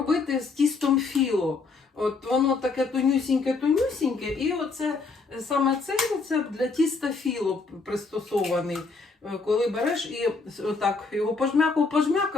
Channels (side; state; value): right; quieter; 4.2 dB